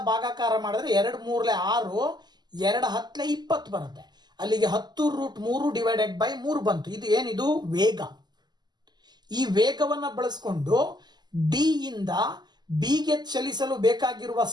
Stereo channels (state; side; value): late; left; 0.21 ms